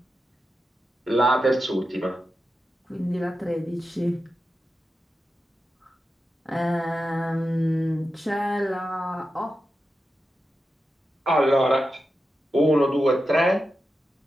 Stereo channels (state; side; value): normal; both; correlation 0.90